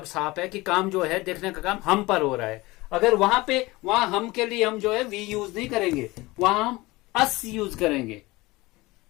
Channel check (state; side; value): quieter; right; 21.2 dB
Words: साफ है कि काम जो है, देखने का काम हम पर हो रहा है। अगर वहां हम के लिए हम जो है वी यूज नहीं करेंगे, वहां हम अस यूज करेंगे,